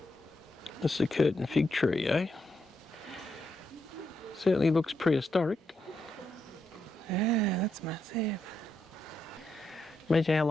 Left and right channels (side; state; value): both; normal; correlation 0.81